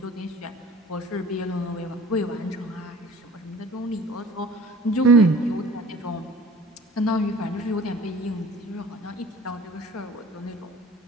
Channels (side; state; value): both; normal; correlation 0.46